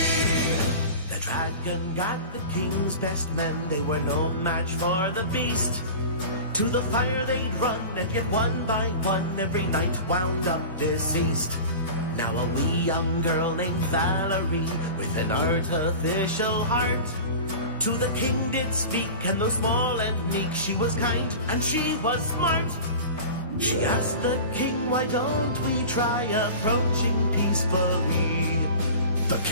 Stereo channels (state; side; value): inverted; both; correlation -0.34